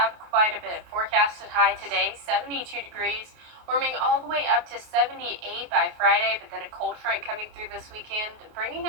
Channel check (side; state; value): left; late; 28 ms